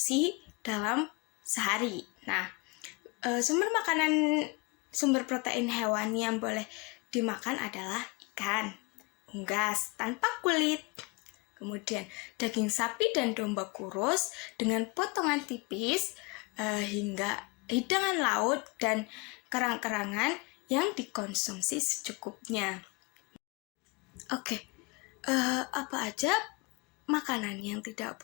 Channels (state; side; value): quieter; right; 27.3 dB